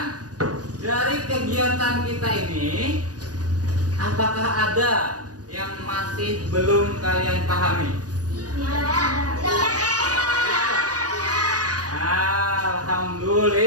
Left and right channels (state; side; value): late; left; 0.68 ms